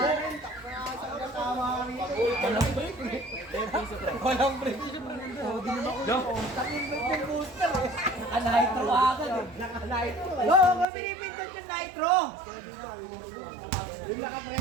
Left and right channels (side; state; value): left; drops out; at 10.9 s